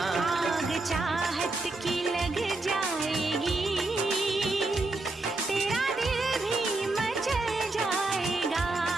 आग चाहत की लग जाएगी, तेरा दिल भी मचल जाएगा।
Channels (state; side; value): quieter; left; 3.1 dB